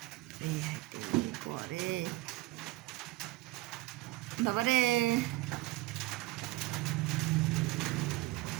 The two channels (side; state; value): left; quieter; 19.6 dB